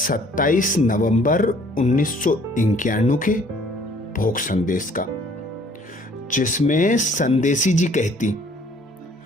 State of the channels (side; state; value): both; normal; correlation 0.58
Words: नवंबर 1991 के भोग संदेश का, जिसमें संदेशी जी कहती,